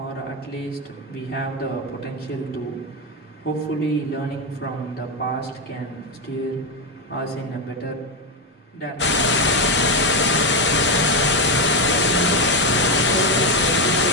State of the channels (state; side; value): normal; both; correlation 0.08